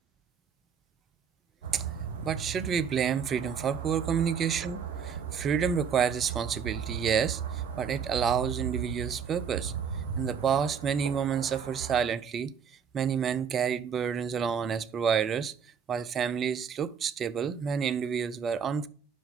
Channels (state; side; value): quieter; left; 7.0 dB